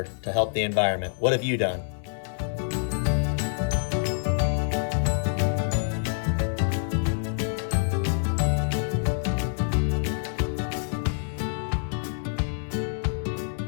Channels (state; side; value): silent; right; 60 dB below the other